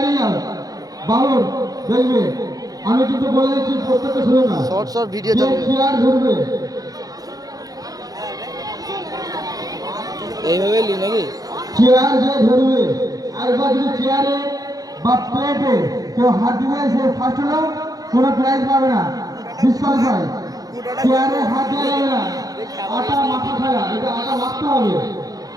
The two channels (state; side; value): late; left; 0.18 ms